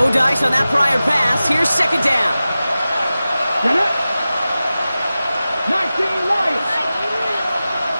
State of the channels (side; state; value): both; inverted; correlation -0.95